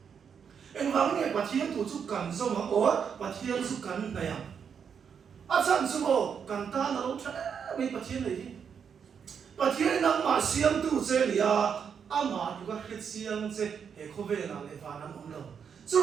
en wa nge pathian thu chu kan zo ma o pathian chu kan na ya a chan chu mo kan ta na lo tha mai pathian nei pathian nang ma siam tu che lia ama juga khisiang che he khove na le va nan omlo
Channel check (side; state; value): left; quieter; 7.1 dB